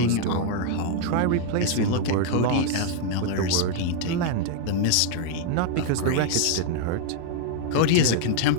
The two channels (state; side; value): different; both; correlation 0.00